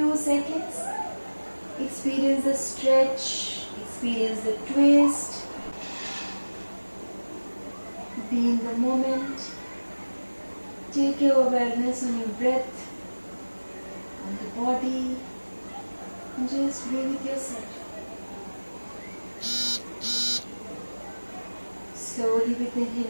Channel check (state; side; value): inverted; both; correlation -1.00